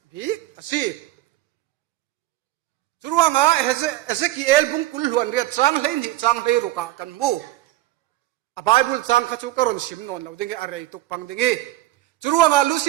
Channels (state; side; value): quieter; left; 15.9 dB